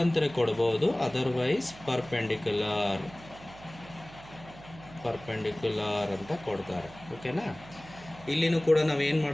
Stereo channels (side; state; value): right; noise; hum, 19 dB below the sound